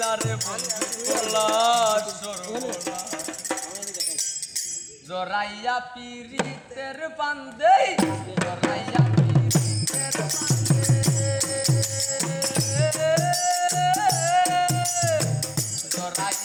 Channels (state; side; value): identical; both; correlation 1.00